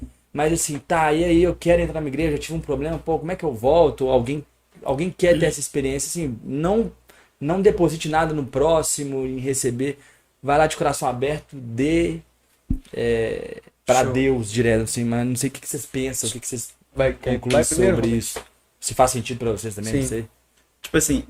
Mas assim, tá, e aí eu quero entrar na igreja, eu tive um problema, pô, como é que eu volto? Ou alguém quer ter essa experiência, assim, não deposite nada no próximo em receber. Vai lá de coração aberto, dê para Show. Deus direto, assim, mas não sei o que vocês pensam, o que vocês concluem primeiro? sobre isso. Se faz sentido pra vocês também, não Sim. sei. Tipo assim,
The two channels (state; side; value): identical; both; correlation 1.00